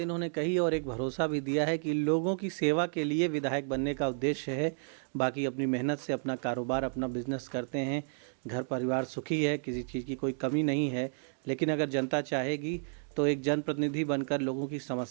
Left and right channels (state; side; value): silent; left; digital silence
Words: कही और एक भरोसा भी दिया है कि लोगों की सेवा के लिए विधायक बनने का उद्देश्य है, बाकी अपनी मेहनत से अपना कारोबार, अपना बिजनेस करते हैं, घर परिवार सुखी है, किसी चीज़ की कोई कमी नहीं है। लेकिन अगर जनता चाहेगी तो एक जनप्रतिनिधि बनकर लोगों की